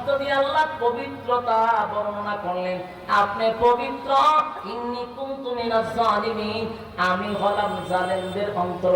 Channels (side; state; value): both; identical; correlation 1.00